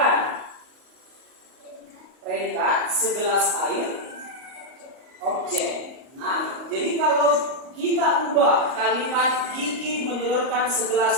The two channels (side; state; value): left; late; 38 ms